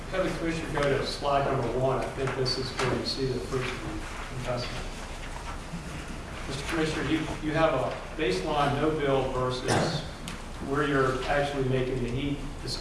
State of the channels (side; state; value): both; identical; correlation 1.00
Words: have the Commissioner go to slide number 1, I think this is where you see the fruits of the investment. Mr. Commissioner, you have a baseline no build versus where you're actually making the heat